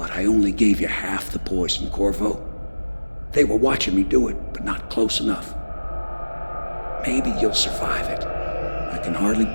I only gave you half the poison, Corvo. They were watching me do it, but not close enough. Maybe you'll survive it. I can hardly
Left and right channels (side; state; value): both; inverted; correlation -1.00